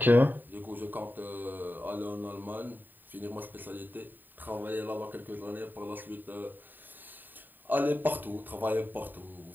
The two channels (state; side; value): late; left; 0.090 ms